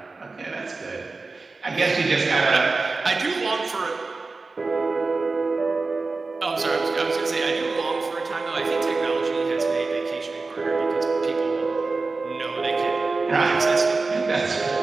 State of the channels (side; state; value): left; quieter; 3.8 dB